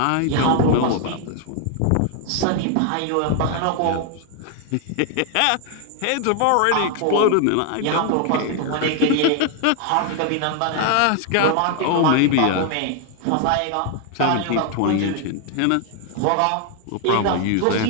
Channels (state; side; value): different; both; correlation 0.00